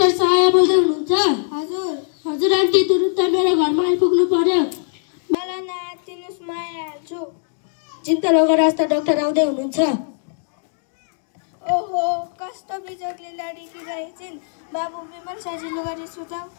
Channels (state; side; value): silent; right; digital silence